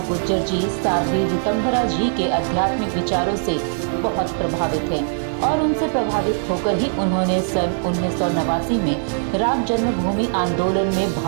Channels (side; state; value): left; silent; 65 dB below the other